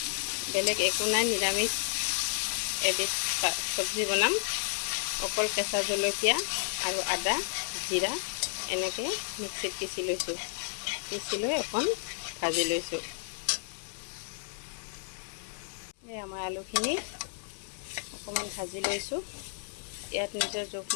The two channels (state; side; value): silent; right; digital silence